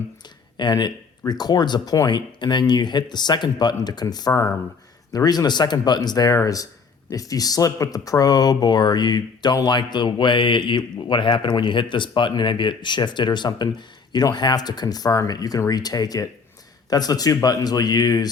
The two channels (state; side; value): quieter; right; 5.2 dB